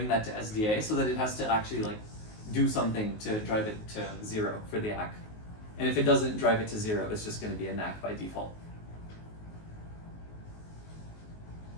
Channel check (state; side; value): late; right; 19 ms